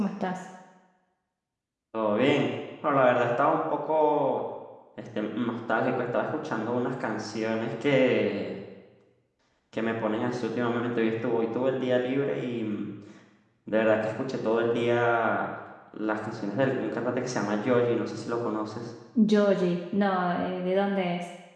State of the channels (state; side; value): identical; both; correlation 1.00